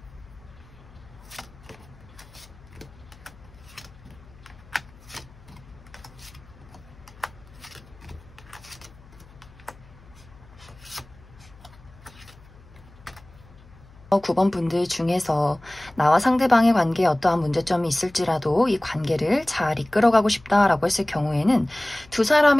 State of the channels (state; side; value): noise; left; hum, 24 dB below the sound